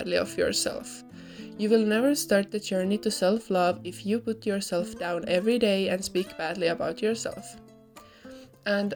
of yourself. You will never start the journey to self-love if you put yourself down every day and speak badly about yourself. And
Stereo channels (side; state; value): both; identical; correlation 1.00